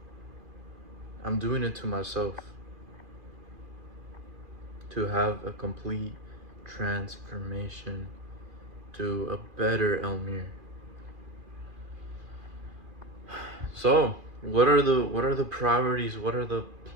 I'm doing it to myself to have a complete transformation to a better Elmir. So, what are the priorities? What are the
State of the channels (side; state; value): left; late; 2.5 ms